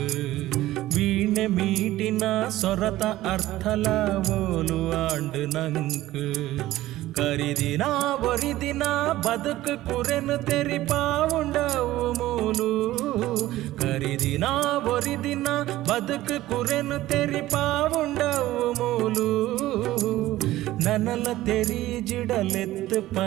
ವೀಣೆ ಮೀಟಿನ ಸೊರತ ಅರ್ಥಲ ಓಲು ಆಂಡು ನಂಕ್ ಕರಿದಿನ ಒರಿದಿನ ಬದುಕು ಕುರೆನು ತೆರಿಪಾವುಂಡವು ಮೂಲು ಕರಿದಿನ ಒರಿದಿನ ಬದುಕು ಕುರೆನು ತೆರಿಪಾವುಂಡವು ಮೂಲು ನನಲ ತೆರಿ ಜಿಡಲೆತ್ತು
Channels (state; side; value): quieter; left; 15.8 dB